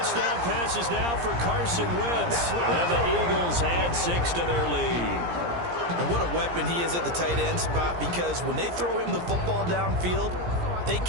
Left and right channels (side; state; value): left; late; 17 ms